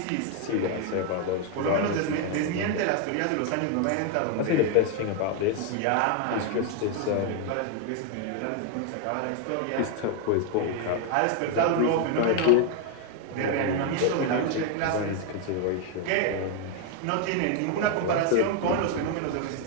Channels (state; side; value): different; both; correlation 0.01